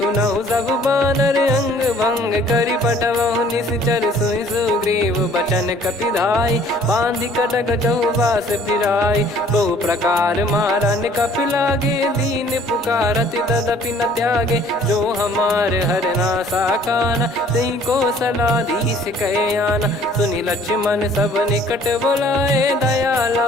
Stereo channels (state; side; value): normal; both; correlation 0.56